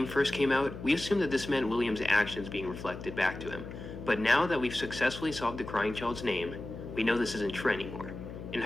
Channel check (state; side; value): noise; left; hum, 10 dB below the sound